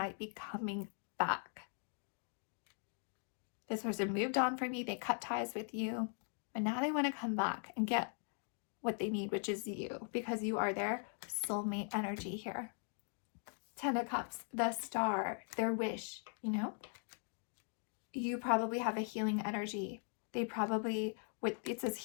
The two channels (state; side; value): silent; right; 51 dB below the other